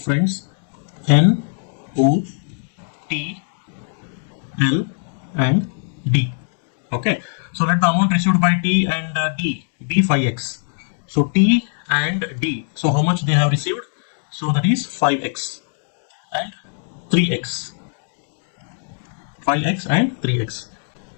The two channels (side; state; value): right; silent; digital silence